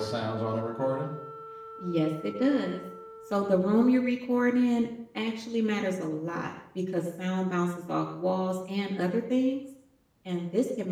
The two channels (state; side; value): identical; both; correlation 1.00